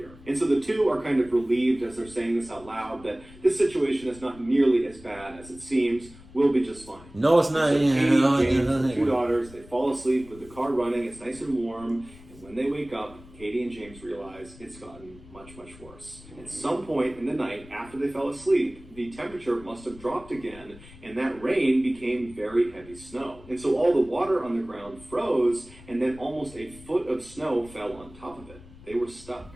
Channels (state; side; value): noise; left; rumble, 20 dB below the sound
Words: And so the two are kind of relieved as they're saying this out loud, that this situation is not nearly as bad as it seems. We'll be just fine. No, it's not. So Katie, James, and 2 daughters, they fall asleep with the car running, it's nice and warm, and when they wake up, Katie and James realize it's gotten much, much worse. At some point in the night, after they fell asleep, the temperature must have dropped again, and that rain became very heavy snow. And so all the water on the ground froze, and then almost a foot of snow fell on top of it. They were stuck.